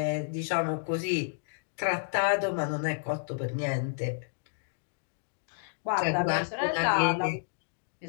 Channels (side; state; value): right; silent; digital silence